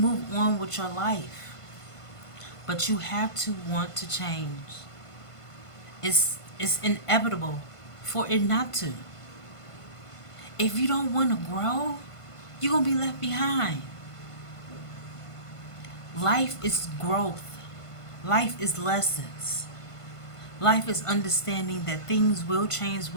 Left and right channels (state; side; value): late; right; 1.5 ms